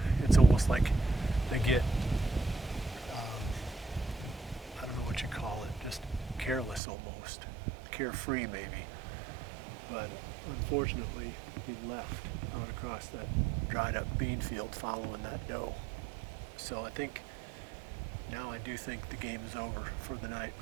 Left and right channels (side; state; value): left; drops out; at 6.8 s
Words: It's almost like they get I don't know what you call it, just careless almost, carefree maybe. But unfortunately, he left out across that dried up bean field following that doe. So I think now I do think the game is over for the night.